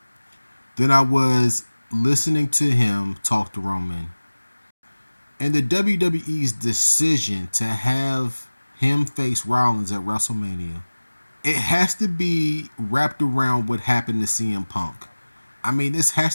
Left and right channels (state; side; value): inverted; both; correlation -1.00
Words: than I was listening to him talk to Roman. And the WWE's decision to have him face Rollins at WrestleMania, it has to be wrapped around what happened to CM Punk. I mean, this